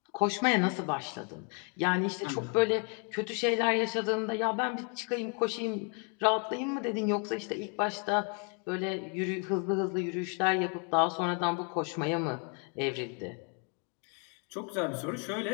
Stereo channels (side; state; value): right; quieter; 38.0 dB